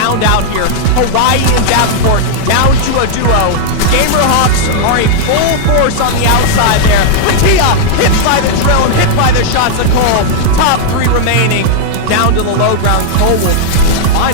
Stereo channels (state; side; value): different; both; correlation -0.01